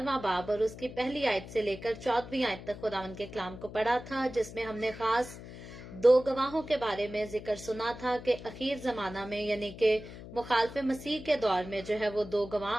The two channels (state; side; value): noise; left; hum, 13 dB below the sound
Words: बाब और उसकी पहली आयत से लेकर 14वीं आयत तक खुदावंद के कलाम को पढ़ा था, जिसमें हमने खास दो गवाहों के बारे में जिक्र सुना था कि अखीर जमाना में यानी कि मुखालफ मसीह के दौर में जो है वो दो